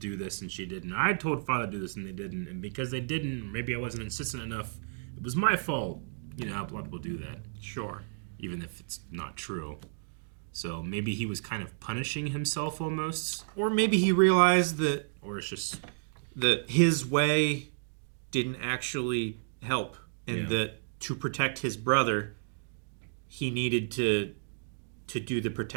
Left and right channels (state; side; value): silent; left; digital silence